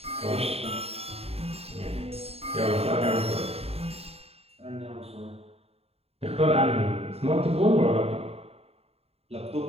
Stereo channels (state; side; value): late; left; 0.29 ms